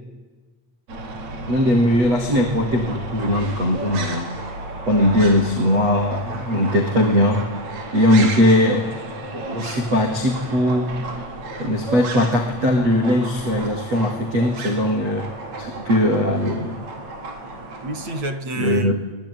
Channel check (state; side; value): late; left; 8.2 ms